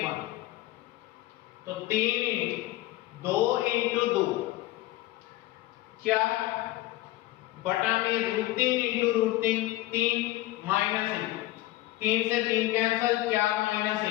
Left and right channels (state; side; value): quieter; right; 16.9 dB